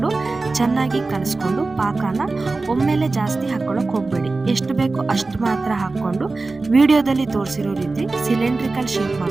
ಚೆನ್ನಾಗಿ ಕಲಿಸ್ಕೊಂಡು, ಪಾಕನ ಒಮ್ಮೆಲೆ ಜಾಸ್ತಿ ಹಾಕೊಳ್ಳೋಕೆ ಹೋಗಬೇಡಿ, ಎಷ್ಟು ಬೇಕೋ ಅಷ್ಟು ಮಾತ್ರ ಹಾಕ್ಕೊಂಡು ವಿಡಿಯೋದಲ್ಲಿ ತೋರಿಸಿರೋ ರೀತಿ ಸಿಲಿಂಡ್ರಿಕಲ್ ಶೇಪ್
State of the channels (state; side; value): quieter; left; 3.6 dB